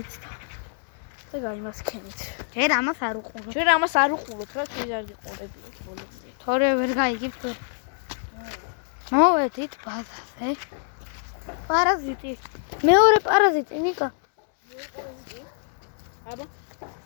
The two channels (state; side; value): silent; right; 61 dB below the other